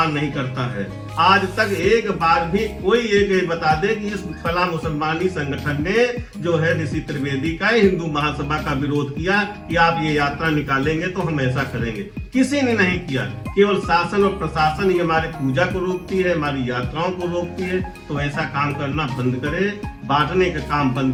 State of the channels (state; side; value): identical; both; correlation 1.00